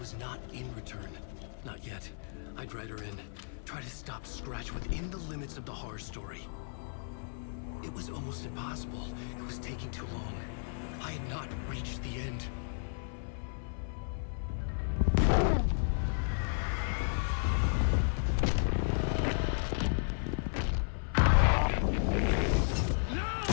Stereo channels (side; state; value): right; silent; 55 dB below the other